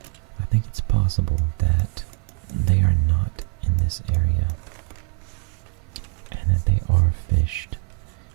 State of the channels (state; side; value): quieter; left; 27.1 dB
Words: I think it's possible that they are not in this area and that they are fished